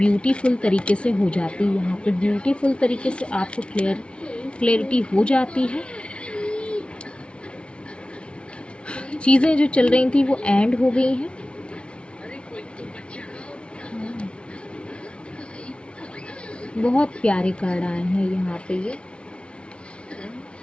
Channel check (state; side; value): late; right; 0.059 ms